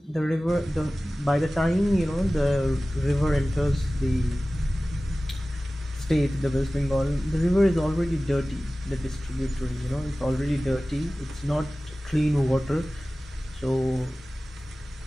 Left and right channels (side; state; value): both; normal; correlation 0.97